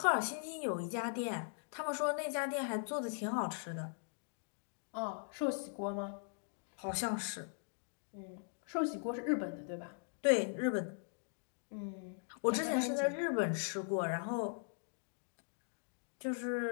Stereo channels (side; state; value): right; silent; digital silence